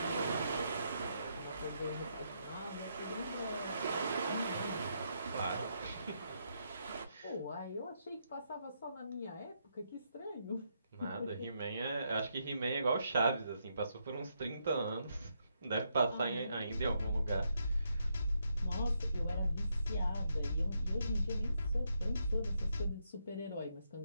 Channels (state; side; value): inverted; both; correlation -0.79